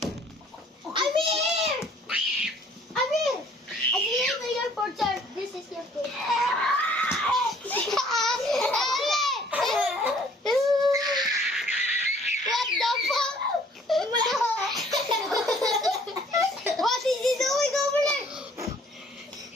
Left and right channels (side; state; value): both; normal; correlation 0.58